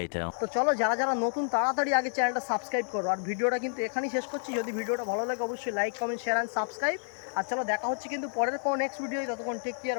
তো চলো, যারা যারা নতুন তাড়াতাড়ি আগে চ্যানেলটা সাবস্ক্রাইব করো। আর ভিডিওটা কিন্তু এখানেই শেষ করছি। যদি ভিডিওটা ভালো লাগে অবশ্যই like, comment, share and subscribe. আর চলো দেখা হচ্ছে কিন্তু পরের কোনো নেক্সট ভিডিও। ততক্ষণ take care,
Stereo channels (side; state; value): right; silent; 56 dB below the other